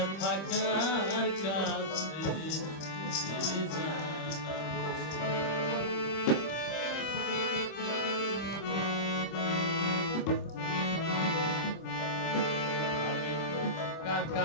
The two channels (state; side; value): late; right; 26 ms